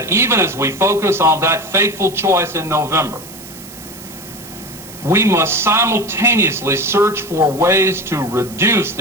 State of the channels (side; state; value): right; noise; hiss, 17 dB below the sound